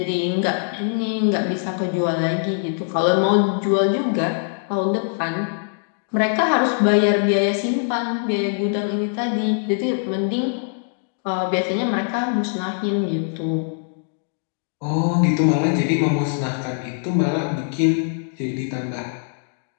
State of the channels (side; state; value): right; silent; digital silence